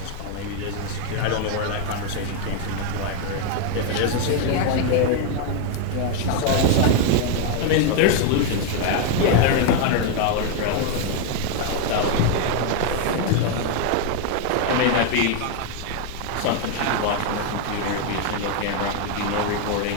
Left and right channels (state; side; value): different; both; correlation 0.01